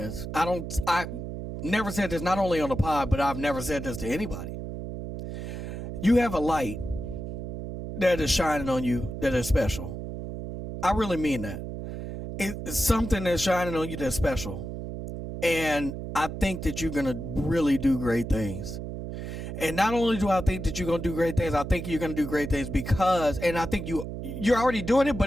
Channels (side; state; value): right; noise; hum, 7 dB below the sound